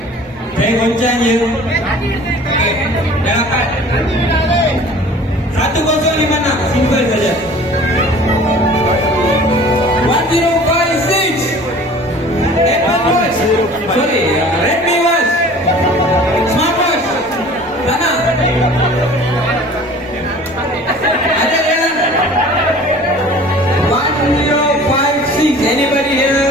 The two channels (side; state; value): both; normal; correlation 0.46